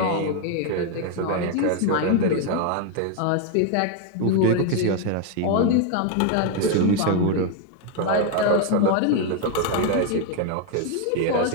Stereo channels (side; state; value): both; different; correlation 0.01